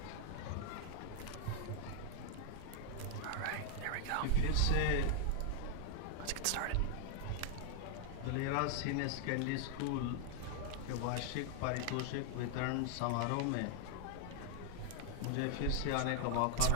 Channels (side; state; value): both; different; correlation 0.00